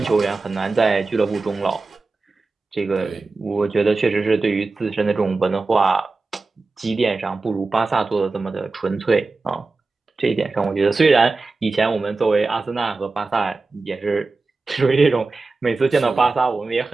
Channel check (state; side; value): quieter; left; 3.8 dB